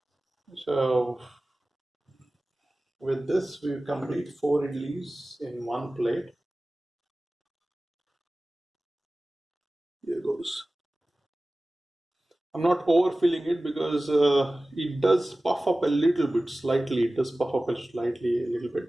So with this, we complete 4 idlis in one plate. Here goes. I'm not overfilling it because it does puff up a little bit, slightly. It does puff up slightly, a little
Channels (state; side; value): normal; both; correlation 0.97